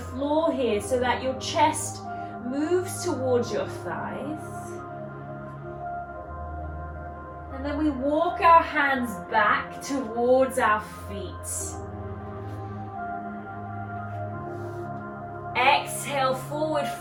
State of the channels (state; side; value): identical; both; correlation 1.00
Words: here so that your chest moves towards your thighs. And then we walk our hands back towards our feet. Exhale, forward